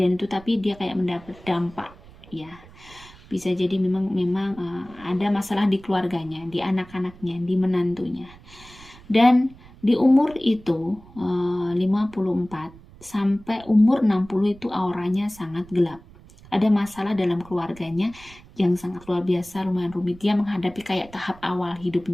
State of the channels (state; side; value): noise; right; rumble, 22 dB below the sound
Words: itu, tapi dia kayak mendapat dampak ya. Bisa jadi memang ada masalah di keluarganya, di anak-anaknya, di menantunya. Dan di umur itu 54 sampai umur 60 itu auranya sangat gelap. Ada masalah dalam keluarganya yang sangat luar biasa, lumayan rumit. Dia menghadapi kayak tahap awal